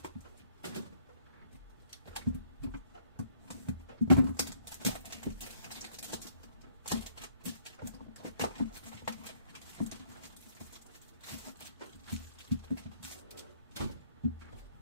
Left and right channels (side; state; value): both; inverted; correlation -0.63